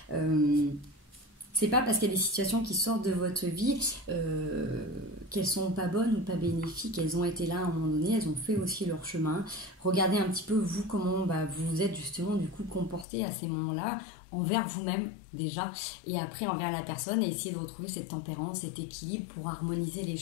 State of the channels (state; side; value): drops out; right; at 13.1 s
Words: C'est pas parce qu'il y a des situations qui sortent de votre vie qu'elles sont pas bonnes ou pas bénéfiques. Elles ont été là à un moment donné, elles ont fait aussi leur chemin. Regardez un petit peu vous comment vous vous êtes justement du coup comporté à ces moments-là, envers vous-même déjà, et après envers la personne, et essayer de retrouver cette tempérance, cet équilibre pour harmoniser les